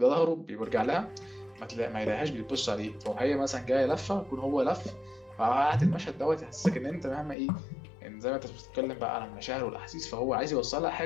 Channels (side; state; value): right; drops out; at 7.4 s